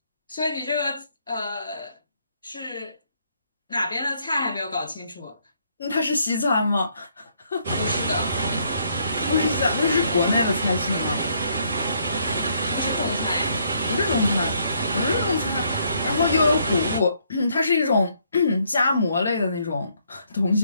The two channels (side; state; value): both; inverted; correlation -0.70